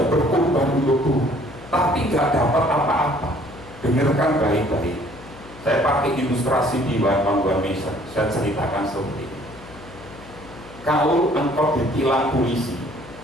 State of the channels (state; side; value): noise; left; hum, 19 dB below the sound